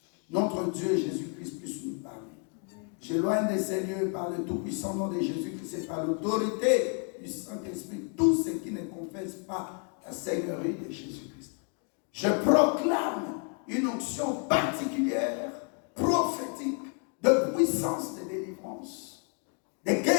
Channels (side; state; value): right; quieter; 38.5 dB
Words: notre Dieu Jésus-Christ puisse nous parler. J'éloigne de ces lieux par le tout-puissant nom de Jésus-Christ et par l'autorité du Saint-Esprit, tous ceux qui ne confessent pas la Seigneurie de Jésus-Christ. Je proclame une onction particulière, prophétique, de puissance de délivrance, de